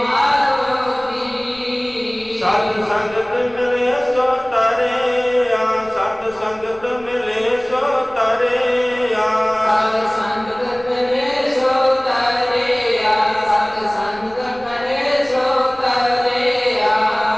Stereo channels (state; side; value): noise; left; rumble, 25 dB below the sound